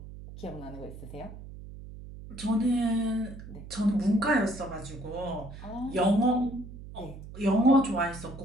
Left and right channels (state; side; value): noise; right; hum, 14 dB below the sound